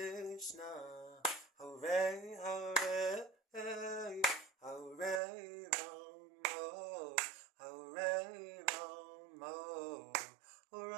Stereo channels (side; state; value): left; drops out; at 5.2 s